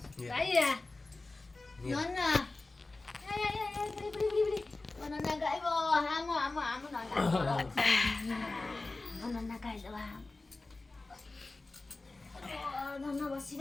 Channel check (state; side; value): quieter; right; 3.3 dB